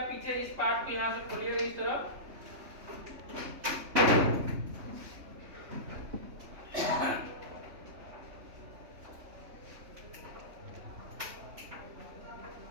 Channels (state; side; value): late; left; 3.2 ms